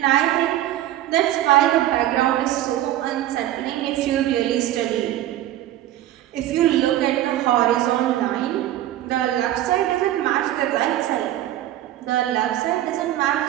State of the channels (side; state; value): left; quieter; 13.5 dB